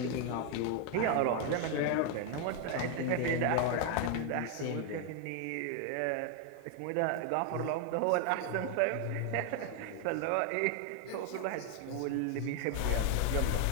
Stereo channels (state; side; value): different; both; correlation 0.00